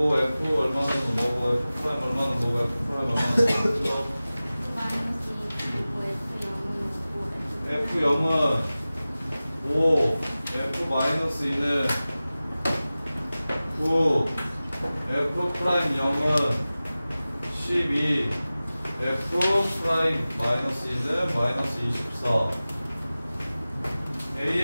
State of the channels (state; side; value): inverted; both; correlation -0.97